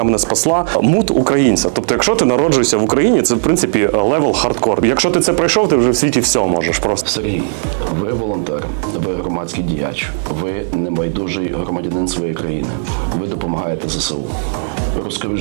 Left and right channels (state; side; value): silent; left; 69 dB below the other